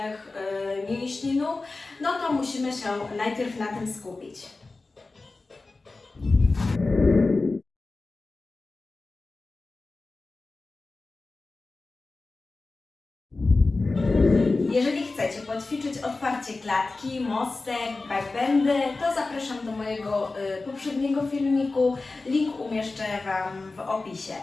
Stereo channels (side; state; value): right; quieter; 3.5 dB